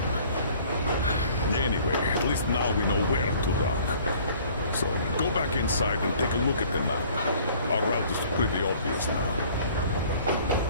Anyway, at least now we know where to run. So, go back inside and take a look at the map. Our route is pretty obvious now.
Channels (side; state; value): both; inverted; correlation -0.53